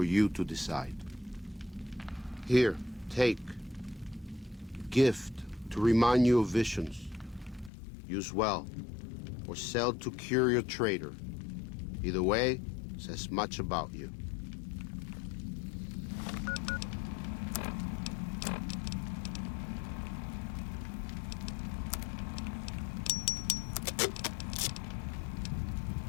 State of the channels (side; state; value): right; drops out; at 7.7 s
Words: you to decide. Here, take. Gift to remind you of visions. Use well, or sell to curious trader. Either way, says much about you.